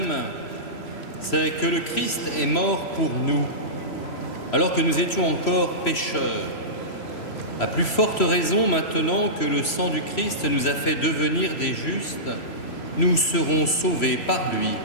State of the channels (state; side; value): late; right; 3.0 ms